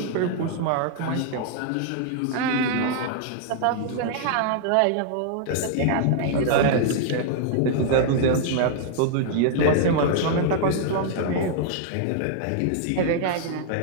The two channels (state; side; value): different; both; correlation -0.01